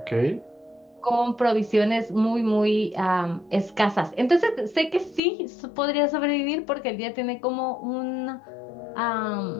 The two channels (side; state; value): right; drops out; at 5.2 s